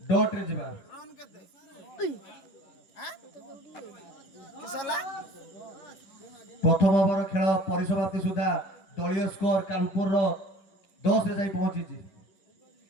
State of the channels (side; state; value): right; late; 11 ms